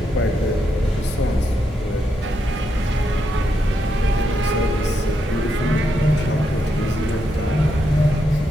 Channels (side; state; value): both; normal; correlation 0.81